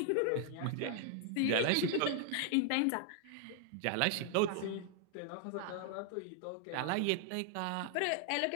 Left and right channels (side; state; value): both; different; correlation 0.00